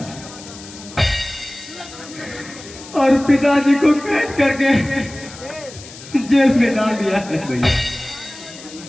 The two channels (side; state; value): left; noise; hiss, 16 dB below the sound